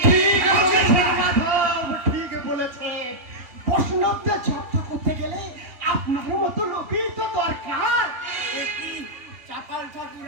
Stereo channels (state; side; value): late; left; 3.2 ms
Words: ঠিক বলেছে। বৈষ্ণবদের চর্চা করতে গেলে আপনার মতো লোকই তো দরকার। কি চাপাল ঠাকুর